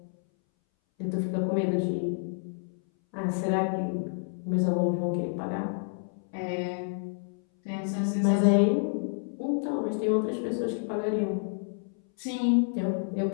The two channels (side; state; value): right; silent; 59 dB below the other